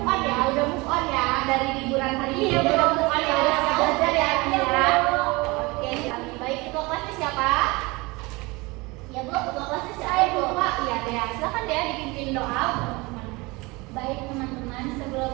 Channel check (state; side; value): quieter; left; 24.3 dB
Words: move on ya, dari liburan hari ini. Iya, udah move on ya, udah siap belajar ya, ya. Oke, baik. Ketua kelasnya siapa? Ya Bu, ketua kelasnya siapa? Saya Bu, Pak. Iya Dea. Silakan Dea dipimpin doa. Baik teman-teman, sebelum